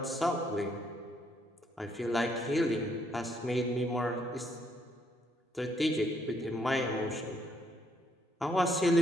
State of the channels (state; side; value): normal; both; correlation 0.71